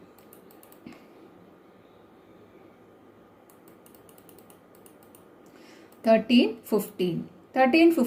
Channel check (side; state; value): both; identical; correlation 1.00